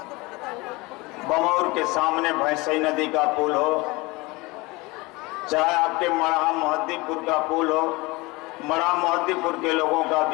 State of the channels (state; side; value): quieter; right; 23.6 dB